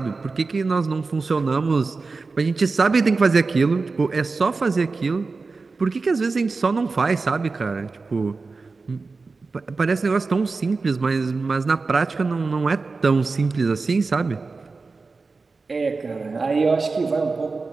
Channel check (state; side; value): quieter; left; 4.1 dB